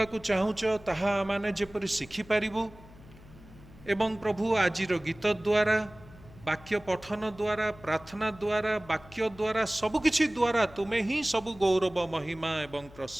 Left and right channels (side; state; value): left; noise; hum, 21 dB below the sound